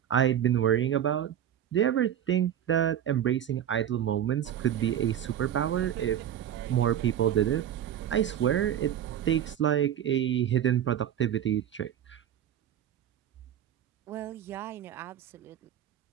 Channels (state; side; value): quieter; left; 10.3 dB